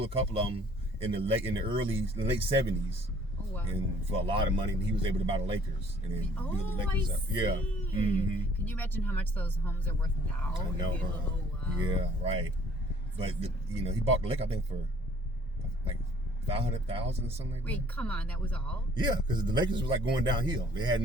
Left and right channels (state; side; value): normal; both; correlation 0.57